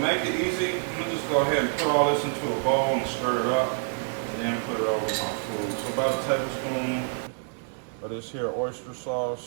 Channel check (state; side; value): silent; left; digital silence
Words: it easy, I'm gonna just go ahead and put all this into a bowl and stir it up, and then put it over my food. So about a tablespoon of this here oyster